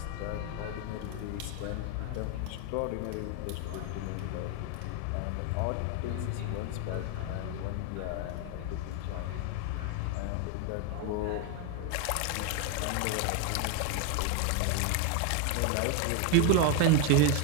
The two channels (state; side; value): different; both; correlation 0.01